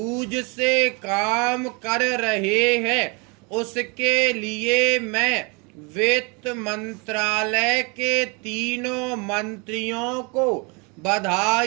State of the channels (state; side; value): quieter; left; 30.6 dB